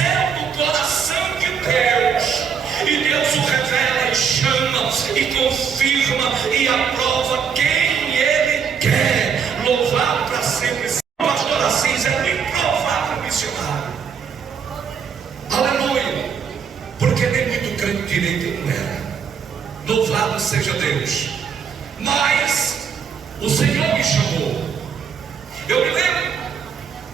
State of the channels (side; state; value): left; quieter; 6.8 dB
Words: do coração de Deus, e Deus o revela e chama e confirma e aprova quem Ele quer. Louvado para sempre. O pastor Assis é um improvável missionário. Aleluia. Porque nem muito crente direito ele não era. Louvado seja Deus. Mas o Senhor me chamou. Eu me lembro,